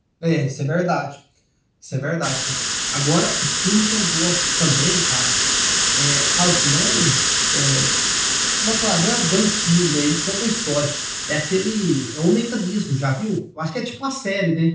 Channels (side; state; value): both; identical; correlation 1.00